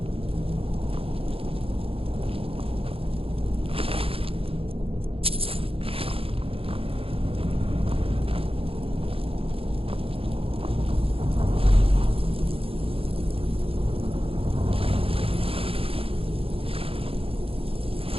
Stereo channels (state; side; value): late; left; 0.27 ms